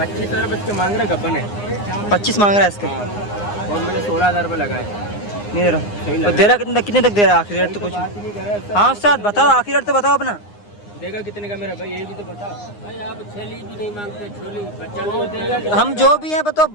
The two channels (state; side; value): late; right; 9.7 ms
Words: रुपये इसके मांग रहे, गब्बन है। 25 मांग रहा है इसके। और मैंने 16,000 रुपये लगाए। नहीं दे रहा। तो दे रहा कितने तक दे रहा है? आखिरी रेट तो कुछ। हाँ उस्ताद बताओ, आखिरी रेट तो बताओ अपना। देगा कितने का मेरा भाई, ये भी तो बता भाई। आप छेली भी नहीं मांगते, छोली बच्चा नहीं देगा। हम जो भी है बताओ,